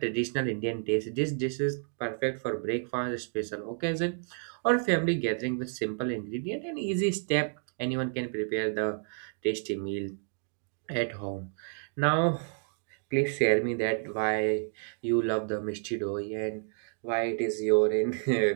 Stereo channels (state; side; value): silent; left; digital silence